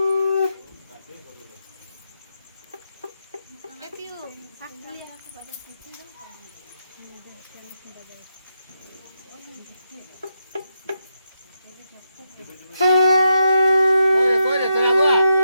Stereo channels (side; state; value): both; inverted; correlation -0.84